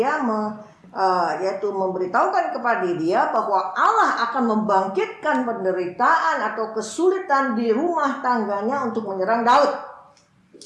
yaitu memberitahukan kepada dia bahwa Allah akan membangkitkan penderitaan atau kesulitan di rumah tangganya untuk menyerang Daud.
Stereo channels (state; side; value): identical; both; correlation 1.00